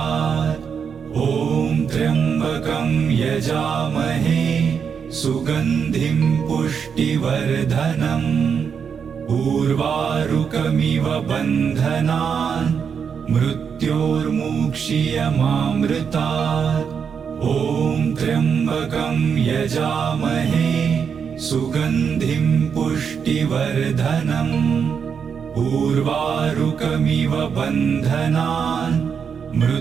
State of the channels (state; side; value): quieter; left; 6.8 dB